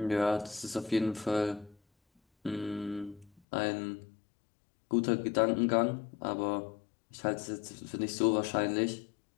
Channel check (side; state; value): right; drops out; at 3.4 s